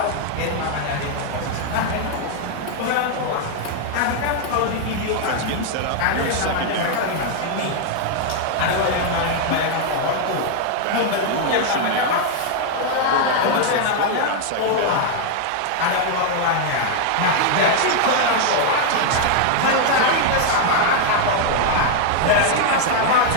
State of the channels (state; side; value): different; both; correlation 0.00